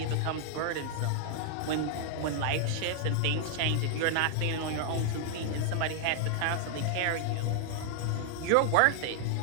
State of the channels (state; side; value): different; both; correlation 0.00